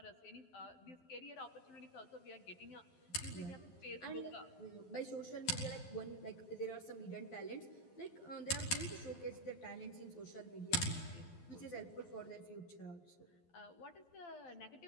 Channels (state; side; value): late; right; 12 ms